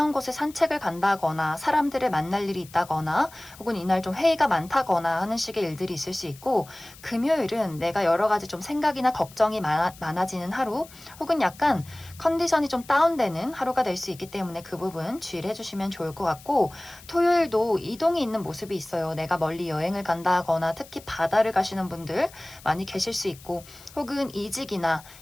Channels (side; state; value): left; noise; hiss, 21 dB below the sound